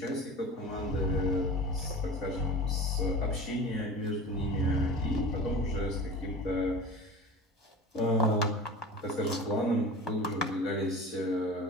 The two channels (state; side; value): normal; both; correlation 0.34